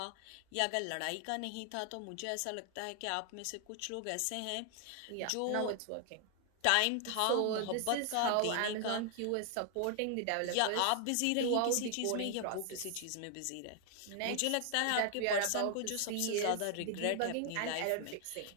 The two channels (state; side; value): different; both; correlation 0.00